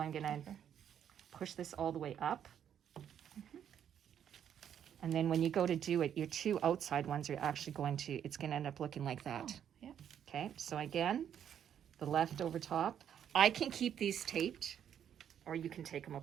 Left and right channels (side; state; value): left; quieter; 9.2 dB